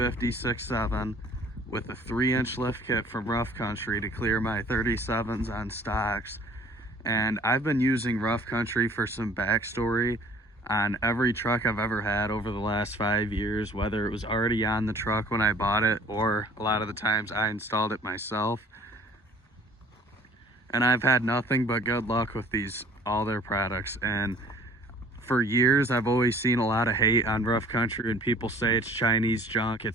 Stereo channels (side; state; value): both; normal; correlation 0.52